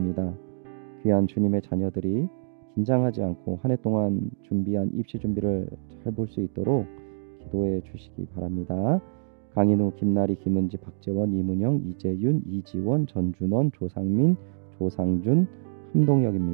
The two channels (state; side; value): silent; left; digital silence